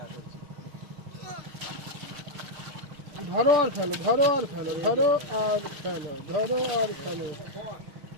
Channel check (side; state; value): left; late; 6.5 ms